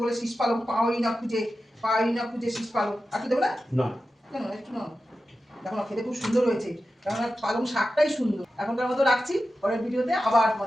বলে শীষ পালং পাওয়াই না খুঁজে শীষ পালং, আর কি দেবো না? না কেন একটু না, দেখো না খেতে খুব সুন্দর হয়েছে, কারণ পালং শাকটাই সুন্দর। এখনকার মতো রাখছি, পরের ভিডিওতে আবার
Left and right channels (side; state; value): both; normal; correlation 0.92